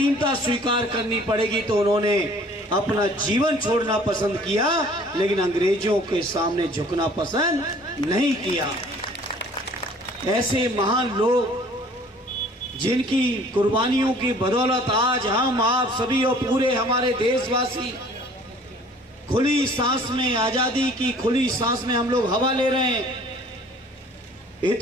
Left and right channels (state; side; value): normal; both; correlation 0.53